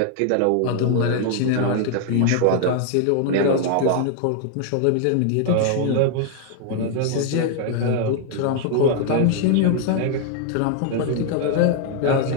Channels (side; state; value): both; different; correlation 0.00